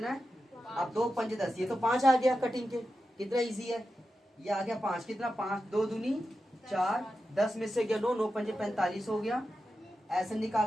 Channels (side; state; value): both; normal; correlation 0.91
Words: है, अब 2 5 10, ये तो 5 आ गया कटिंग के। कितना इजी है, ये आ गया 5। कितना, 5 2 दूनी 4, 10 में से गया 9, 9 5 45 हो गया। ऐसे